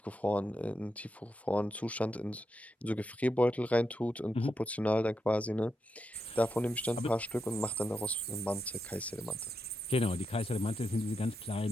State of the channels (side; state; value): both; normal; correlation 0.85